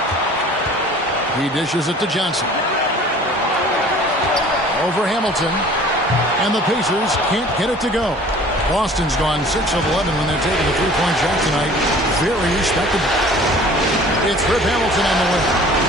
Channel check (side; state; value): both; normal; correlation 0.48